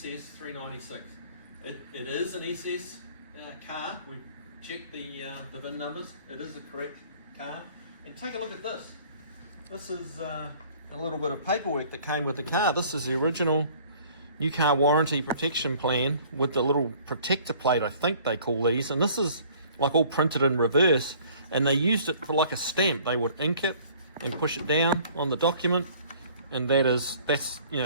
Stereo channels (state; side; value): inverted; both; correlation -0.54